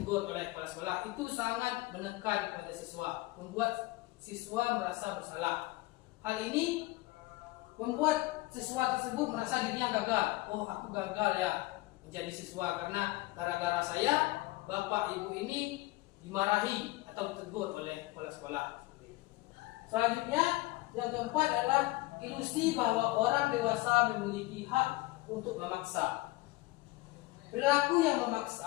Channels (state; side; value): quieter; right; 20.3 dB